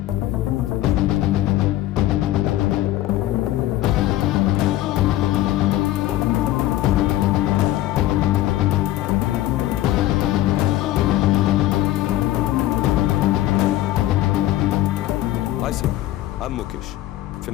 Hi sir, I'm Mukesh,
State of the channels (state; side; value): quieter; right; 14.8 dB